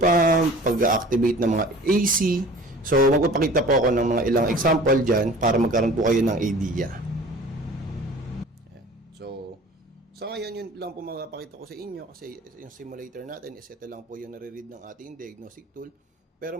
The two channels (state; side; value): normal; both; correlation 0.44